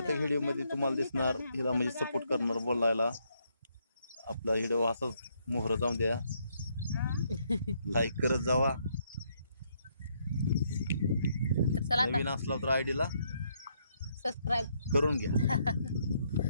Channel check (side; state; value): both; inverted; correlation -0.73